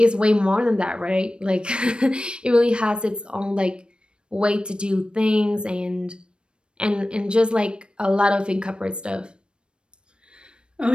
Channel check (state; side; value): late; left; 0.055 ms